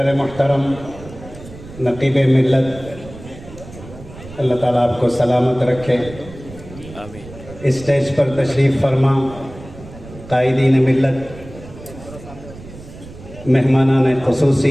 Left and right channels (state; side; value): noise; right; rumble, 17 dB below the sound